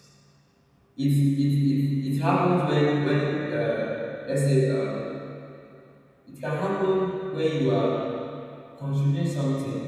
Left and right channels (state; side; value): identical; both; correlation 1.00